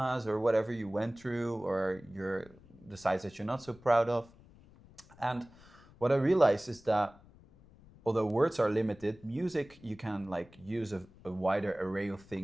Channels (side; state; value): left; noise; rumble, 24 dB below the sound